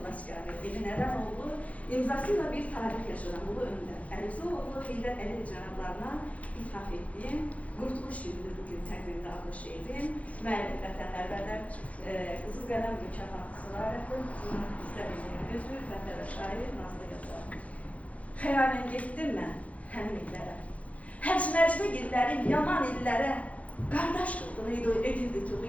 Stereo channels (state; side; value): late; right; 0.066 ms